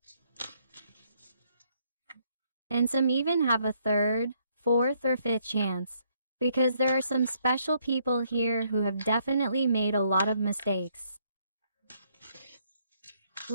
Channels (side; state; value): both; inverted; correlation -0.70